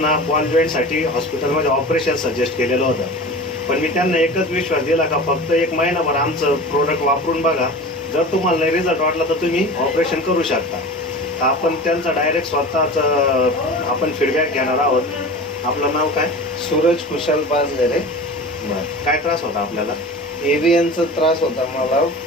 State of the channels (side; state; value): both; normal; correlation 0.35